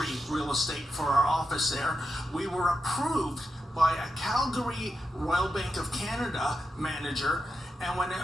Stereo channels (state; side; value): normal; both; correlation 0.87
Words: real estate for our office there. We were approved by a Calgary Royal Bank of Canada manager, and when